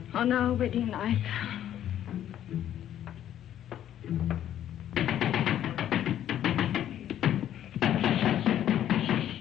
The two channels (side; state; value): right; quieter; 11.1 dB